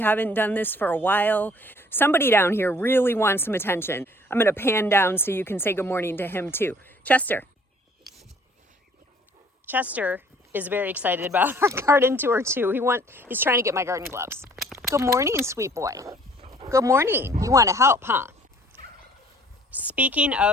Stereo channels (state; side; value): normal; both; correlation 0.56